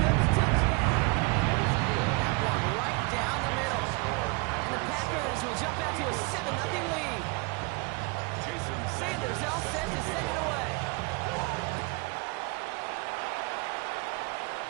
touchdown. That one right down the middle. And the Packers will jump out to a 7-0 lead. Sanders all set to send it away.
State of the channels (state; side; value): quieter; left; 28.7 dB